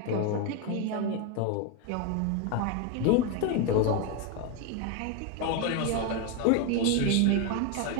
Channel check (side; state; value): both; different; correlation 0.02